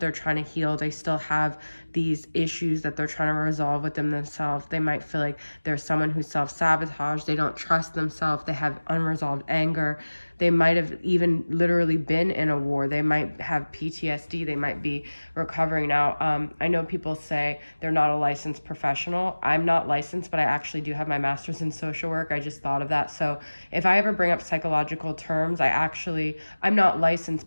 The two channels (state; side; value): inverted; both; correlation -1.00